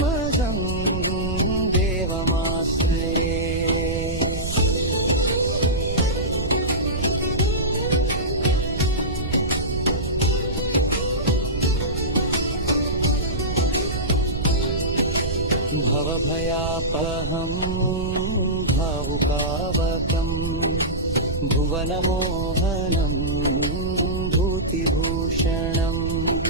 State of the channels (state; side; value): noise; right; rumble, 5 dB below the sound